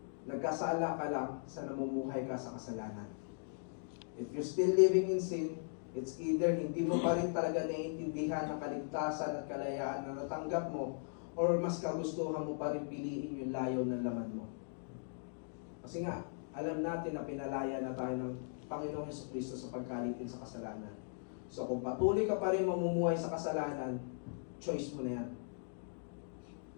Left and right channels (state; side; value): silent; right; digital silence